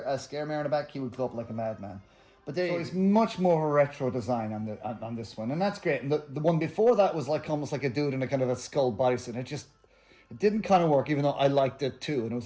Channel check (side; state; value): both; identical; correlation 1.00